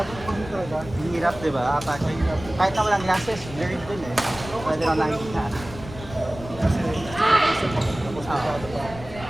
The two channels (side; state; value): left; noise; rumble, 14 dB below the sound